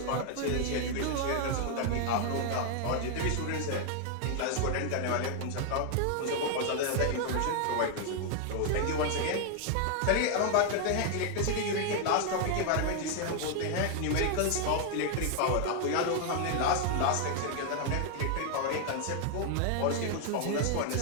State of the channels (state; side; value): different; both; correlation 0.00